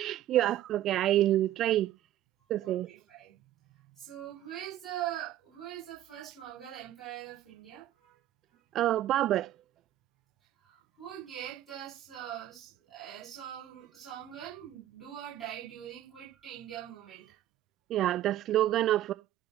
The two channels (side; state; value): left; quieter; 13.1 dB